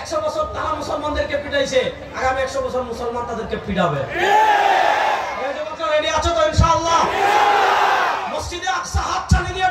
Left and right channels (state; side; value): identical; both; correlation 1.00